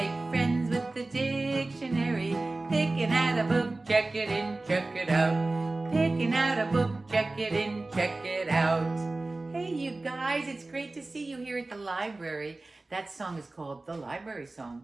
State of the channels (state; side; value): quieter; left; 3.1 dB